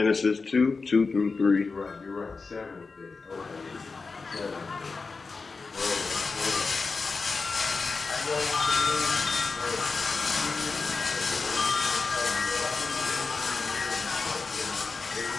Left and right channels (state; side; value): quieter; right; 4.3 dB